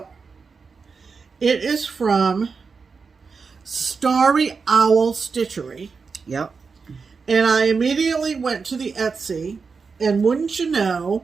it is from StarryOwlStitchery. Yep. And I immediately went to the Etsy, and wouldn't you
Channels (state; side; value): quieter; left; 5.1 dB